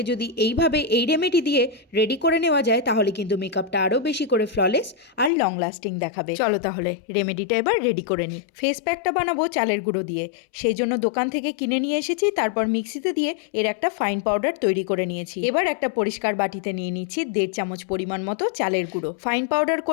যদি এইভাবে এই রেমেডি দিয়ে রেডি করে নেওয়া যায় তাহলে কিন্তু মেকআপটা আরও বেশি করে ফ্ললেস আর লং লাস্টিং দেখাবে। চলো তাহলে রেমেডিটা এবার রেডি করে নিই। ফেস প্যাকটা বানাবো চালের গুঁড়ো দিয়ে, সেই জন্য দোকান থেকে কিনে নিয়ে এসেছি। তারপর মিক্সিতে দিয়ে এর একটা ফাইন পাউডার তৈরি করে নিয়েছি। এবার একটা পরিষ্কার বাটিতে নিয়ে নিচ্ছি 1.5 চামচ পরিমাণ মতো চালের গুঁড়ো। ফাইন পাউডার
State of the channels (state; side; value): drops out; right; at 5.3 s